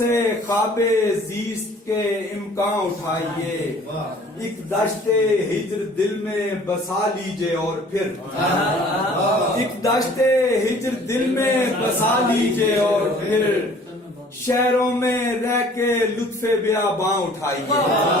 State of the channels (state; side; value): normal; both; correlation 0.52